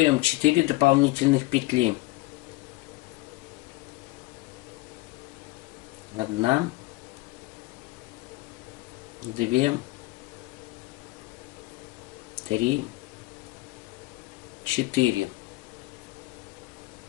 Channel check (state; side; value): quieter; right; 20.9 dB